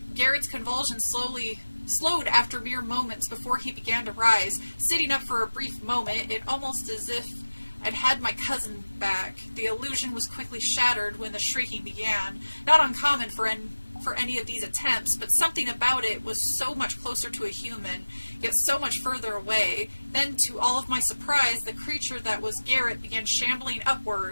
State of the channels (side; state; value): both; inverted; correlation -1.00